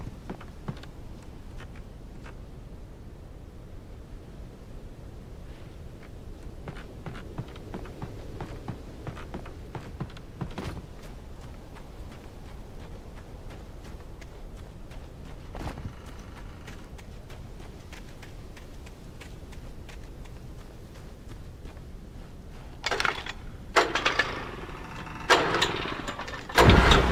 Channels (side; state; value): both; identical; correlation 1.00